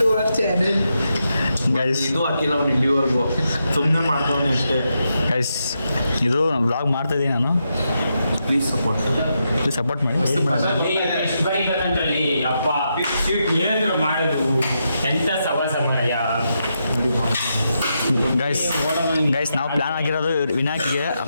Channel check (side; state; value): both; inverted; correlation -0.84